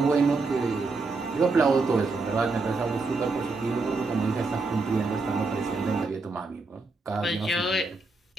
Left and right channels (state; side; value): quieter; left; 3.7 dB